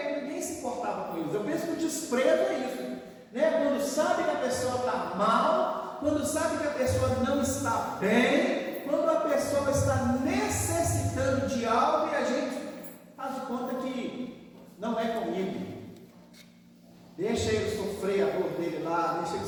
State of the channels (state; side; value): identical; both; correlation 1.00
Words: ninguém se importava com coisas. Eu penso que o desprezo é isso, né? Quando sabe que a pessoa está mal, quando sabe que a pessoa não está bem, quando a pessoa está necessitando de algo e a gente faz de conta que não é comigo. Deixa ele sofrer a dor dele lá, deixa ele